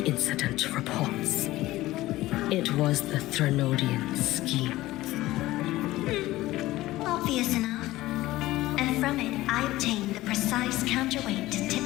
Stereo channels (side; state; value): right; quieter; 17.0 dB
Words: incident reports. It was the Threnodian scheme. Obvious enough. And from it, I obtained the precise counterweight to tip